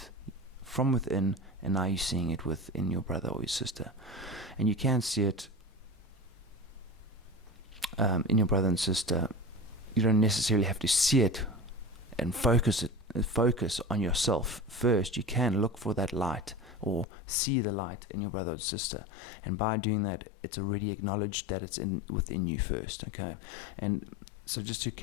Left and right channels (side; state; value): right; drops out; at 17.1 s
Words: from within, and now you're seeing it within your brother or your sister. And you can see it in your brother and sister. You don't necessarily have to see it and focus on yourself first. You can look for that light, or see the light in your brother or sister, and by doing that, it's already acknowledged that it's within you first. Okay, and so just to